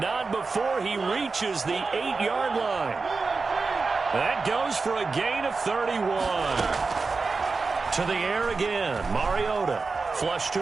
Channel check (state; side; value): quieter; left; 4.2 dB